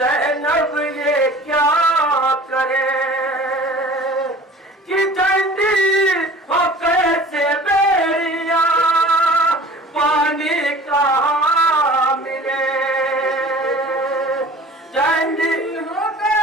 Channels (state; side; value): normal; both; correlation 0.44